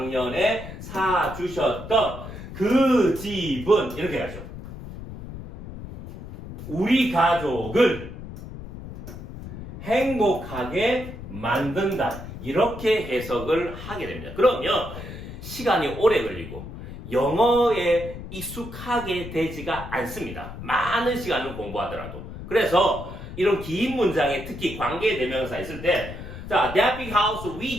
사주셨던 그 집은 이렇게 하죠. 우리 가족을 행복하게 만든다. 이렇게 해석을 하게 됩니다. 그러면 시간이 오래 걸리고 영어에 익숙하게 되지가 않습니다. 많은 시간을 공부하더라도. 그래서 이런 긴 문장에 특히 관계대명사 있을 때 자, that big house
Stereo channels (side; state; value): left; noise; rumble, 11 dB below the sound